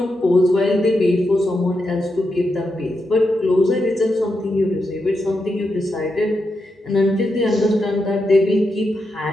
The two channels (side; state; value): both; normal; correlation 0.85